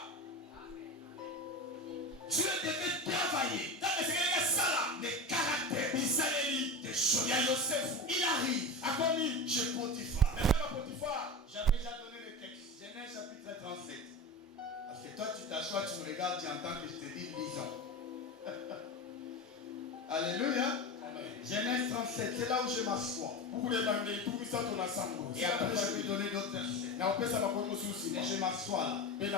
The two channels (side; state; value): both; normal; correlation 0.25